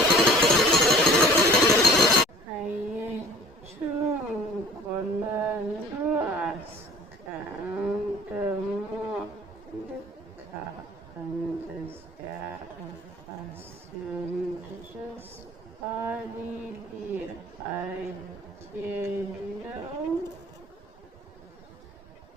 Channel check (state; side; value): normal; both; correlation 0.50